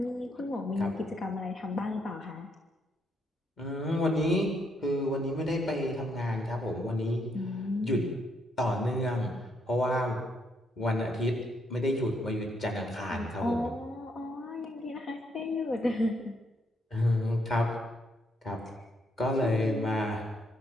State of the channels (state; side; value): normal; both; correlation 0.74